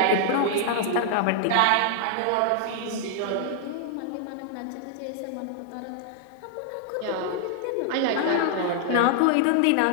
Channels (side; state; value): both; different; correlation 0.00